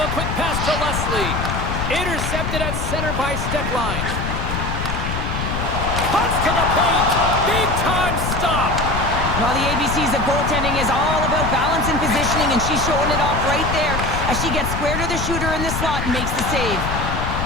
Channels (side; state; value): left; noise; rumble, 3 dB below the sound